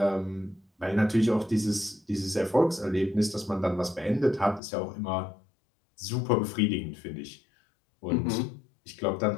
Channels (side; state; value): right; drops out; at 4.6 s